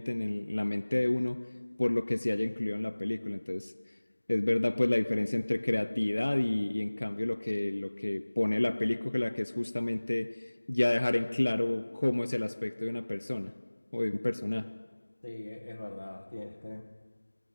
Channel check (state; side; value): inverted; both; correlation -1.00